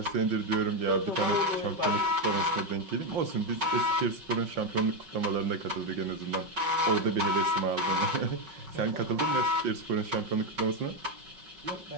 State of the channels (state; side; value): late; left; 5.4 ms